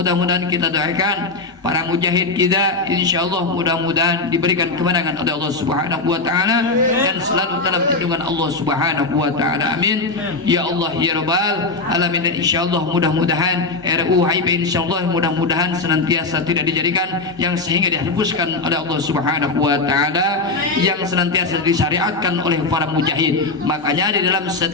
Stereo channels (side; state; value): right; quieter; 3.6 dB